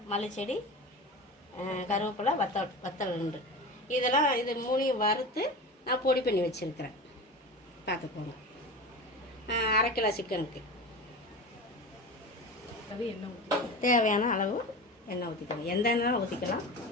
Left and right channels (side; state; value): both; normal; correlation 0.30